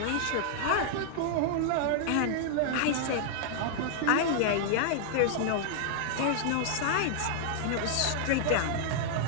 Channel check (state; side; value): different; both; correlation -0.01